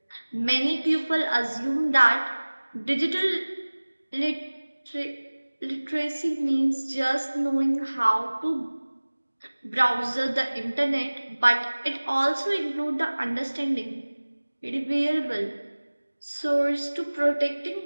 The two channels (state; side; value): inverted; both; correlation -1.00